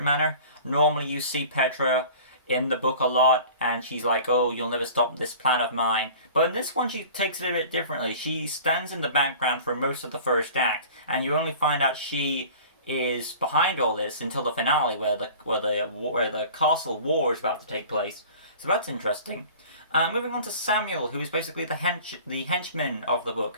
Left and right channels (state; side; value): inverted; both; correlation -0.43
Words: manner. Normally, you see Petra in the book a lot, and she's like, "Oh, you'll never stop this plan of mine." But in this one, she takes it a bit differently. She stands in the background for most of the first act, and you only find out she is behind all this until the finale, where the castle war is about to take place. So that's interesting. Moving on to Samuel, who is basically the henchman of the book,